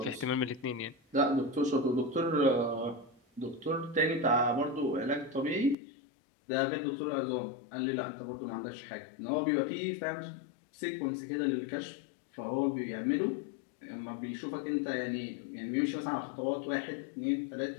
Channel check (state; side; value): drops out; right; at 5.8 s